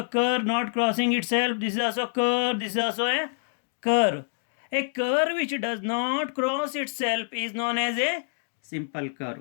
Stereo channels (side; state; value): right; silent; digital silence